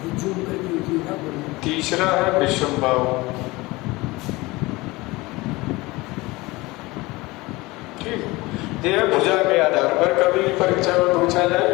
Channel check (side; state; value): right; quieter; 21.8 dB